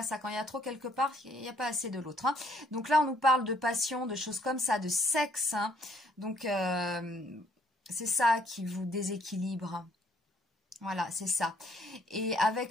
ça. Quand il y a trop quelque part, il n'y a pas assez de l'autre. Donc là, on nous parle de passion, de choses comme ça, de sexe. Donc, c'est ça qui vous déséquilibre. Voilà, c'est ça. Et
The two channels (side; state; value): both; normal; correlation 0.65